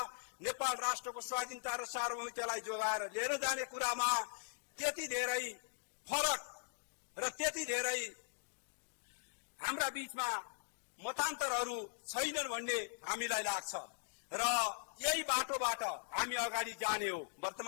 नेपाल राष्ट्रको स्वाधीनता र सार्वभौमिकतालाई जोगाएर लिएर जाने कुरामा त्यति धेरै फरक र त्यति धेरै हाम्रा बीचमा मतान्तरहरू छैनन् भन्ने हामीलाई लाग्छ र यही बाटोबाट हामी अगाडि जाने हो।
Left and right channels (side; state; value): right; silent; digital silence